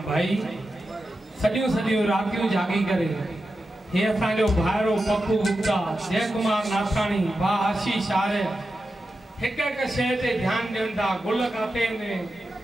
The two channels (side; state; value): both; normal; correlation 0.91